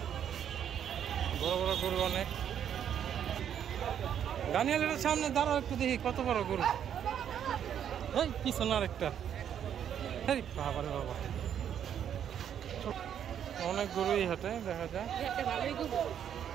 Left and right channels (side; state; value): left; quieter; 9.2 dB